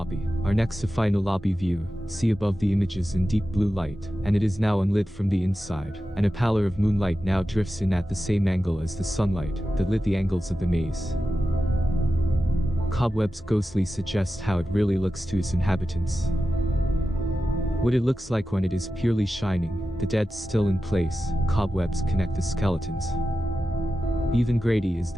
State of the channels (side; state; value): both; normal; correlation 0.92